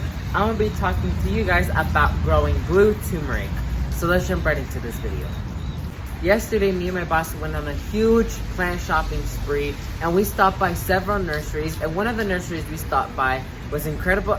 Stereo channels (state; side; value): identical; both; correlation 1.00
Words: I'm going to be talking to you guys about growing blue turmeric. So let's jump right into this video. Yesterday, me and my boss went on a huge plant shopping spree, and we stopped by several nurseries, and one of the nurseries we stopped by was Incredible